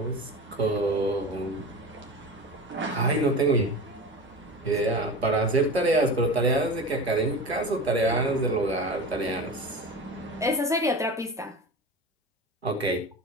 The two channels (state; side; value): normal; both; correlation 0.30